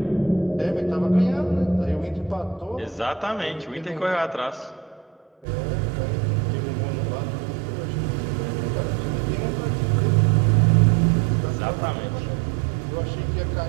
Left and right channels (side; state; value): left; drops out; at 5.5 s